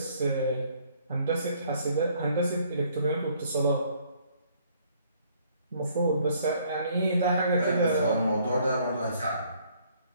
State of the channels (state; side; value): inverted; both; correlation -0.63